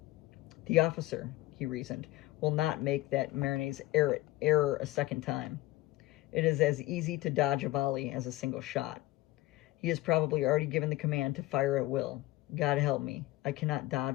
The officer, he reasoned, will not make that Marinet's error a second time. It is as easy to dodge a volley as a single shot. He has probably already given the command to fire at will. God help me, I cannot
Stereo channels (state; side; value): quieter; right; 18.1 dB